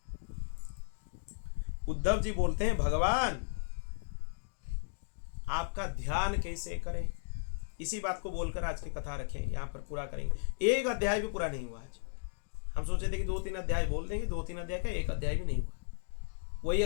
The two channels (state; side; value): silent; right; digital silence